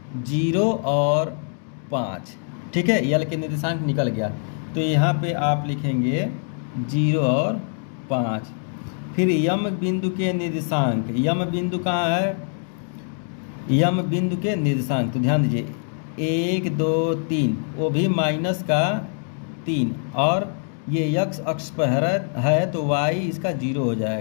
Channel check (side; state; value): right; silent; 63 dB below the other